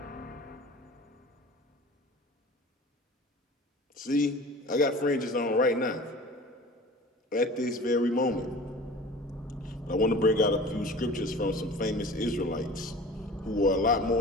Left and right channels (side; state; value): both; normal; correlation 0.41